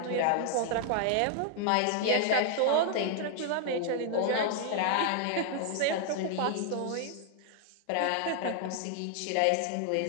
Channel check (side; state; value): both; different; correlation 0.00